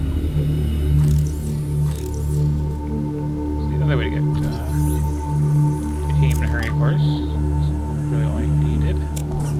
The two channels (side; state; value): both; identical; correlation 1.00